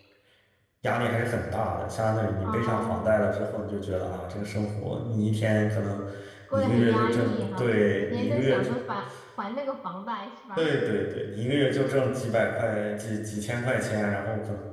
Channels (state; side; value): identical; both; correlation 1.00